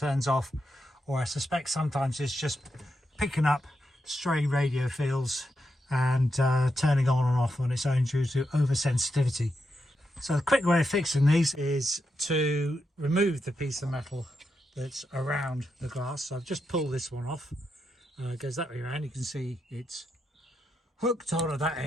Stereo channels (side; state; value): both; normal; correlation 0.85